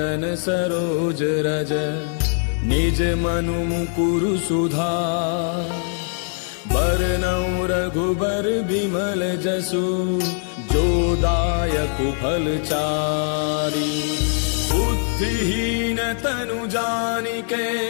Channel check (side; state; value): right; silent; digital silence